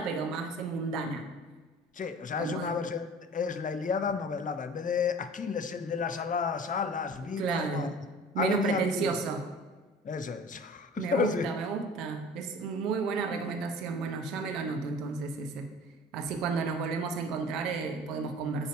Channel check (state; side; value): normal; both; correlation 0.43